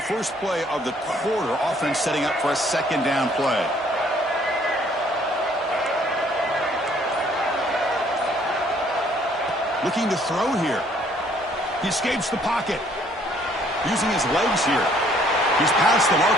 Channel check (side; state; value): both; normal; correlation 0.62